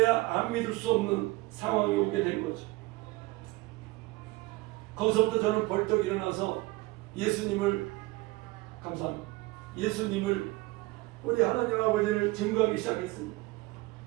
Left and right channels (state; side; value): quieter; left; 21.0 dB